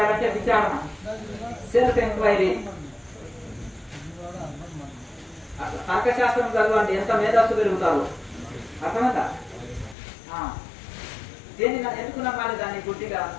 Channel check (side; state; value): right; drops out; at 10.0 s